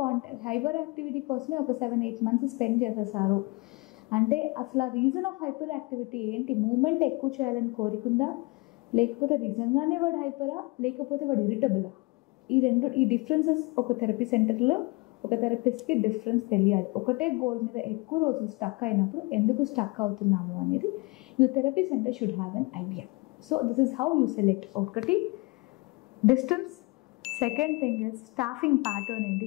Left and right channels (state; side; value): quieter; right; 25.6 dB